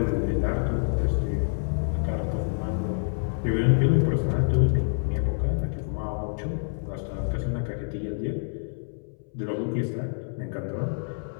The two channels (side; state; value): right; silent; 60 dB below the other